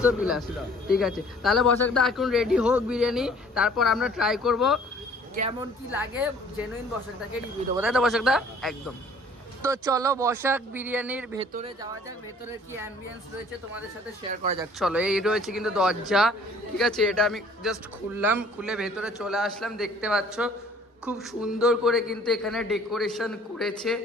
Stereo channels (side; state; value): both; normal; correlation 0.55